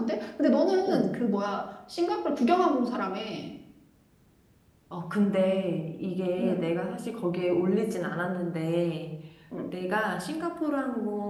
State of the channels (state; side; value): identical; both; correlation 1.00